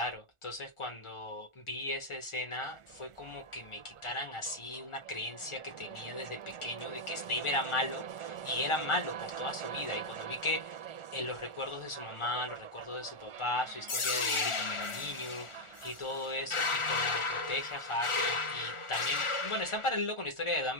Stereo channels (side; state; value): right; late; 1.4 ms